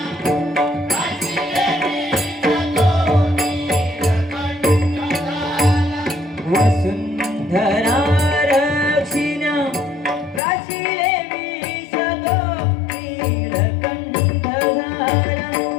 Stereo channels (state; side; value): drops out; right; at 10.4 s